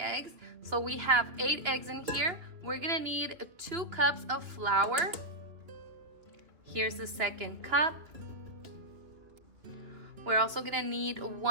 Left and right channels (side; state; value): left; late; 3.1 ms